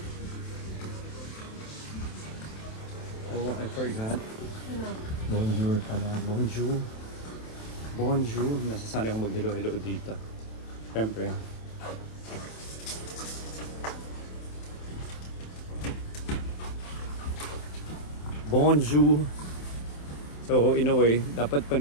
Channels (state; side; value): late; right; 27 ms